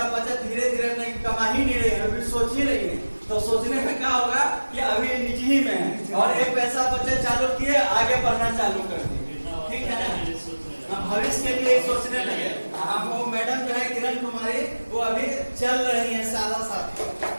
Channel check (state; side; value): inverted; both; correlation -1.00